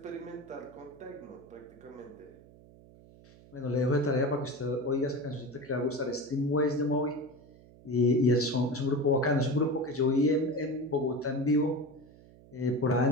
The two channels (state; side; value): noise; right; hum, 23 dB below the sound